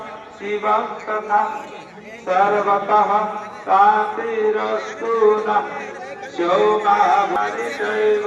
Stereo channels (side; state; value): both; identical; correlation 1.00